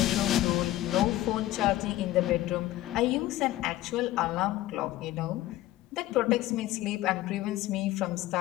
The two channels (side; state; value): right; quieter; 15.4 dB